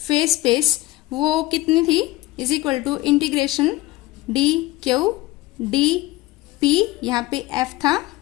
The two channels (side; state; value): right; quieter; 18.8 dB